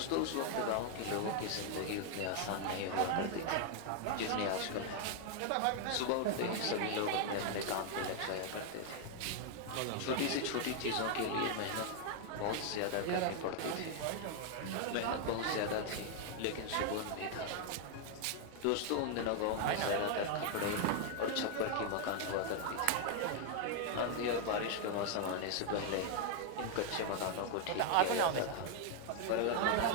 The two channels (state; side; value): different; both; correlation 0.00